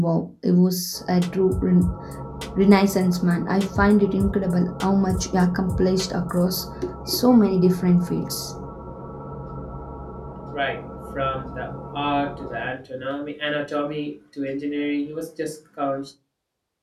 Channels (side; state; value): both; identical; correlation 1.00